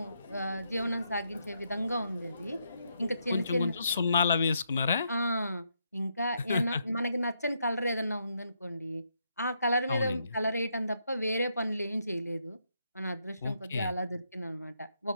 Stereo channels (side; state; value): both; inverted; correlation -0.78